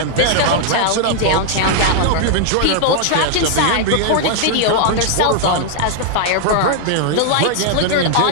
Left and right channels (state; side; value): different; both; correlation 0.00